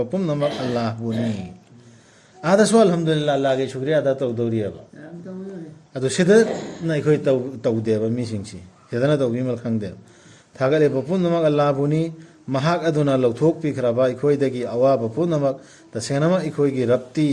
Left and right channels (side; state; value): both; identical; correlation 1.00